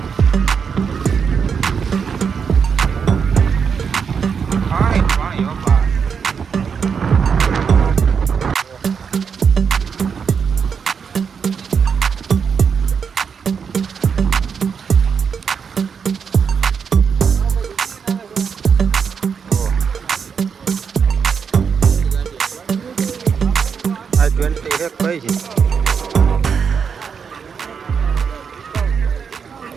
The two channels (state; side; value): quieter; left; 6.4 dB